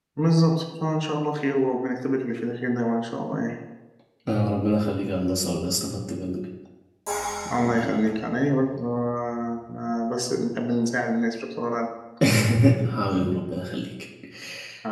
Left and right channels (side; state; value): both; identical; correlation 1.00